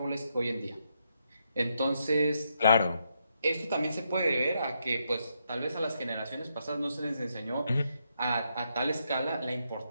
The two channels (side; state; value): both; inverted; correlation -0.79